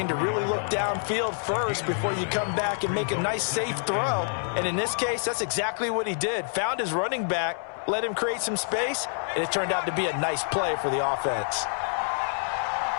to really look downfield first before you come back and make a nice, safe throw. And in this case, that's exactly what he did. Found his running back, let him create some space, and it turned out to be a nice play for the offense.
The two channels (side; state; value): right; silent; 60 dB below the other